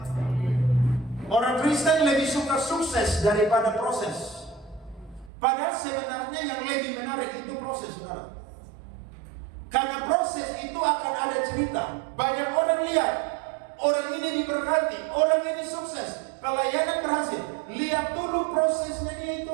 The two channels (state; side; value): drops out; left; at 5.3 s